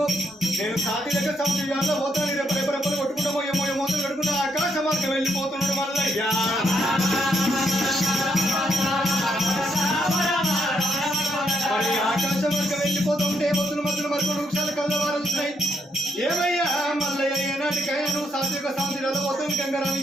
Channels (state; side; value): normal; both; correlation 0.76